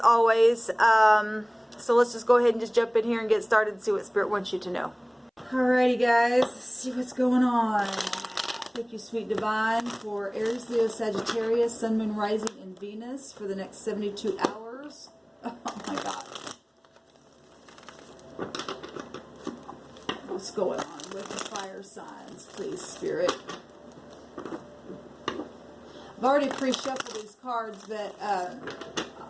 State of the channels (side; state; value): both; identical; correlation 1.00